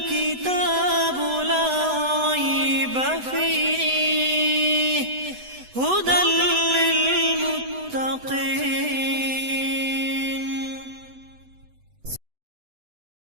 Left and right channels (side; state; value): left; late; 8.0 ms